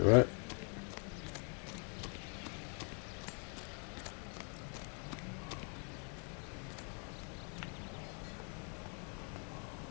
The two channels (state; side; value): quieter; right; 39.2 dB